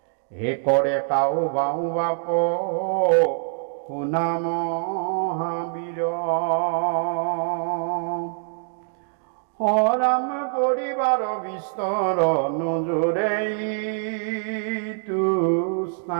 হে কৰে কাউ বাউ বাপ শুনা মহাবীৰ। ৰাম পৰিবাৰ বিস্তৰ নজৰে তু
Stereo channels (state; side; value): silent; left; digital silence